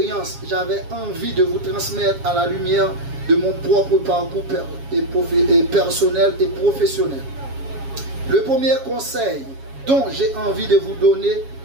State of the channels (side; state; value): left; late; 7.3 ms